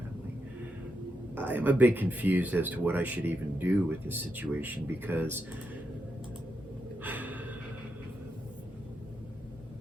I am a bit confused as to what I should even do with this situation because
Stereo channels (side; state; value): both; normal; correlation 0.84